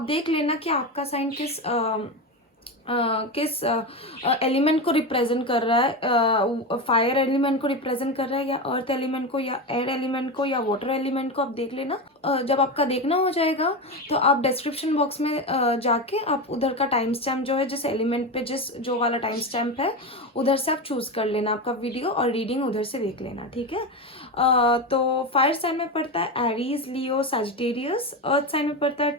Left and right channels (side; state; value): both; normal; correlation 0.18